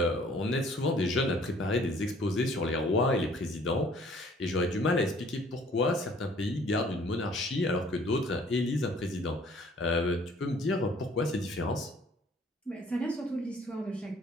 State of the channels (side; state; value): both; normal; correlation 0.56